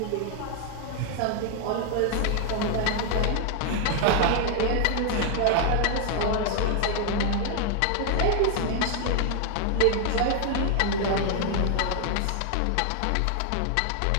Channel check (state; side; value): different; both; correlation 0.00